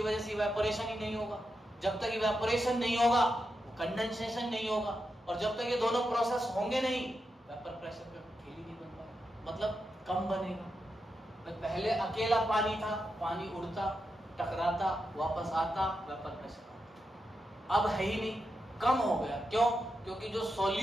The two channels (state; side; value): normal; both; correlation 0.87